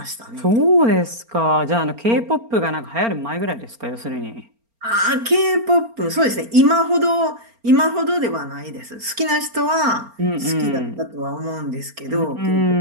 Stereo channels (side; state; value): left; late; 4.3 ms